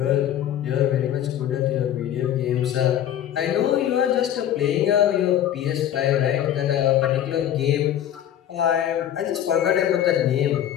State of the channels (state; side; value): quieter; right; 10.8 dB